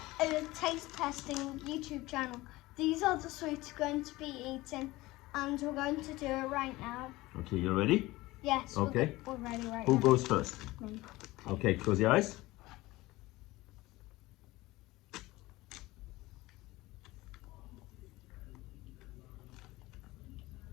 a taste testing YouTube channel. These are the sweets we're going to be eating, and we're going to do it right now. Okay, you ready? Yes. Okay. We're ready right Who now. goes first? Me. Okay, close your eyes.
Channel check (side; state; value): right; quieter; 19.4 dB